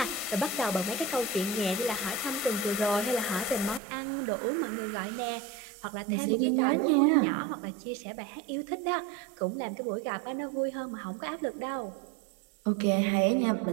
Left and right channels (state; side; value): drops out; left; at 3.8 s